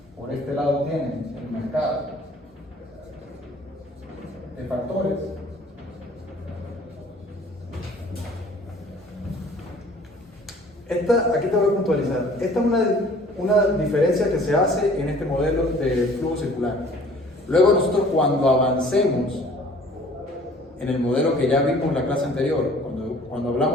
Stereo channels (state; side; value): normal; both; correlation 0.52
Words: Por este lado tienen el mercado de factores. Aquí te voy a puntualizar. Esta es una diferencia que se hace en este modelo de flujo circular. Luego nosotros cuando avancemos en el modelo que ya vimos en la clase anterior, cuando